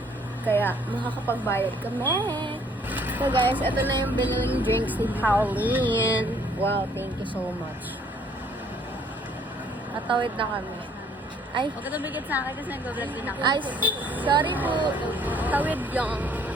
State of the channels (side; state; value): both; normal; correlation 0.62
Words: Kaya, makakapagbayad kami. So guys, ito na yung biniling drinks ni Pauline. Wow, thank you so much. Natawid na kami. Ay, Huwag ka tumigit sa akin kasi nag-vlog din ako. ay, sorry po. Tawid yung.